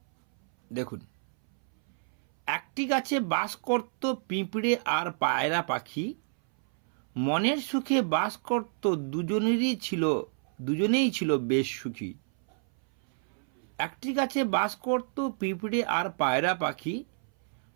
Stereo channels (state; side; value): silent; left; 58 dB below the other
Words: দেখুন, একটি গাছে বাস করত পিঁপড়ে আর পায়রা পাখি, মনের সুখে বাস করত দুজনেই ছিল বেশ সুখী। একটি গাছে বাস করত পিঁপড়ে আর পায়রা পাখি,